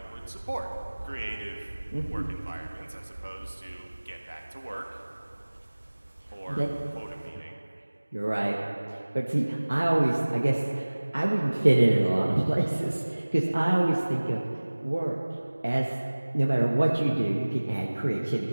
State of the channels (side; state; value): both; inverted; correlation -1.00